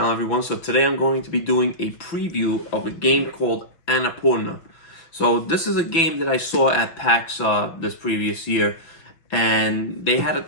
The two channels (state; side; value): late; right; 6.0 ms